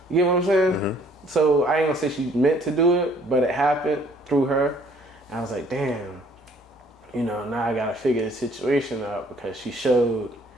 You get what I'm saying? Mm-hmm. So I ain't gonna say she meant to do it, but it happened through her. And I was like, damn, you know, now I gotta figure the situation out because she showed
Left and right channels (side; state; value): both; normal; correlation 0.60